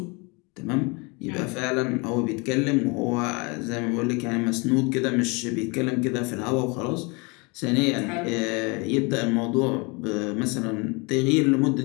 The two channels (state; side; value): quieter; right; 29.2 dB